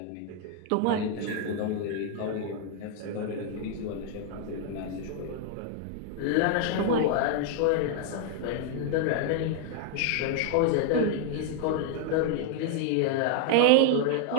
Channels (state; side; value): different; both; correlation 0.00